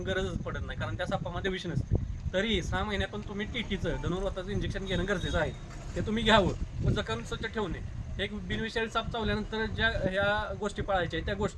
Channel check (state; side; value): identical; both; correlation 1.00